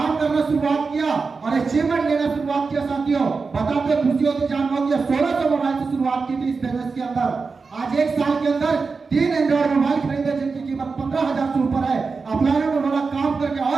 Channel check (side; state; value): left; quieter; 4.6 dB